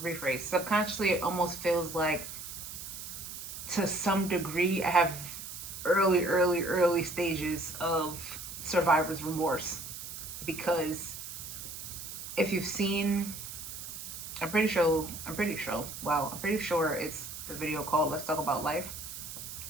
rephrase, subconsciously, it almost feels like to some degree, I have early stages of survivor's remorse because if you've seen, I'm pretty sure it's the video called Let's Talk About Life.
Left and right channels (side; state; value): right; noise; hiss, 9 dB below the sound